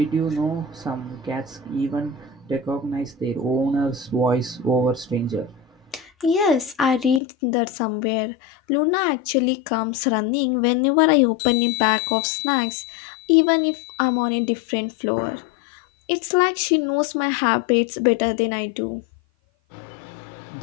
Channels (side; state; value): right; drops out; at 7.2 s